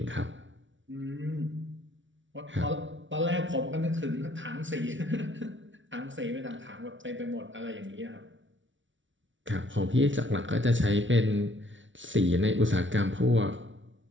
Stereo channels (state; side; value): late; left; 0.56 ms